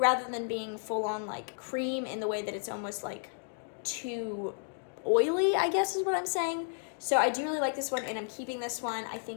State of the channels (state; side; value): silent; right; digital silence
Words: than being full on like cream in the way that it's almost like too oily, I guess is what I'm saying. So I do really like this one, and I'm keeping this one. I